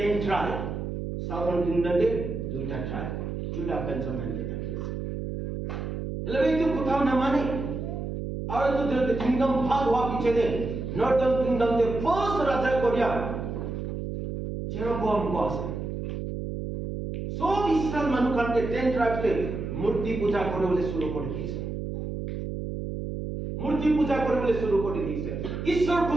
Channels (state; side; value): noise; right; hum, 5 dB below the sound